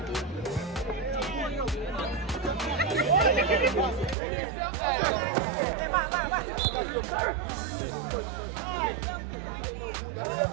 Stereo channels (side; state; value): left; drops out; at 4.2 s